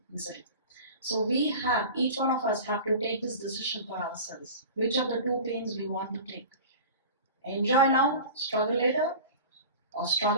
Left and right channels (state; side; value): inverted; both; correlation -0.36